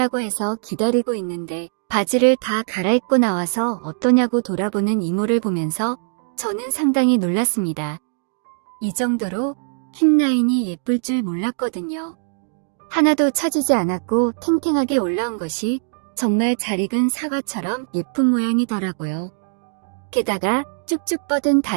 해서 기다리고 있는데 바지를 다 갈아입고 나와서 어떠냐고 돌아보는 이모를 보면서 저는 상당히 놀랐습니다. 이 정도로 힙라인이 예쁠 줄 몰랐거든요. 하나도 처지지 않았고 탱탱하게 올라온 것이 정말 잘 익은 사과처럼 예쁜 모양이더라고요. 게다가 쭉쭉 뻗은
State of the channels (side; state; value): left; silent; digital silence